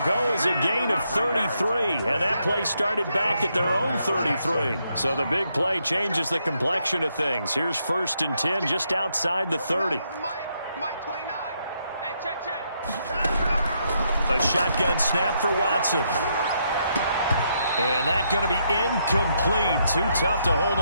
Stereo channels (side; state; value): both; inverted; correlation -0.77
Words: go as a gain of 33, and that play started back at their own 33. So the big play changes the complexion of things. Here's 1st and 10 just outside the 30. Mike 29. Hey, check. A shotgun snap for Watson. And that's going to be incomplete. Too tough to hold